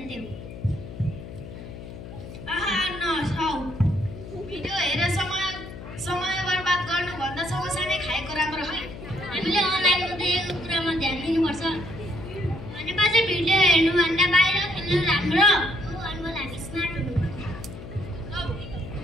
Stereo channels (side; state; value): left; noise; hum, 12 dB below the sound